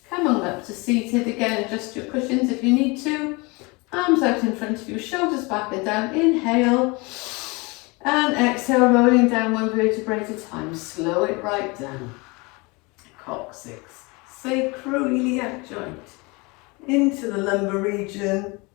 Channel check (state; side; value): quieter; right; 26.9 dB